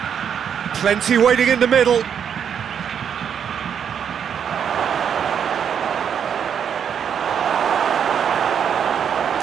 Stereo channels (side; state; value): left; quieter; 8.0 dB